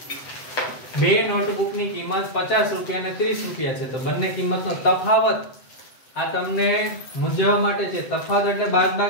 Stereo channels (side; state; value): right; late; 7.8 ms